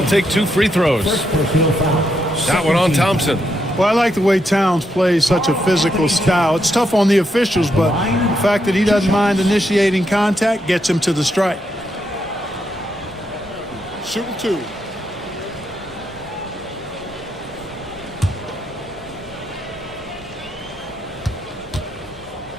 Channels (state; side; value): normal; both; correlation 0.80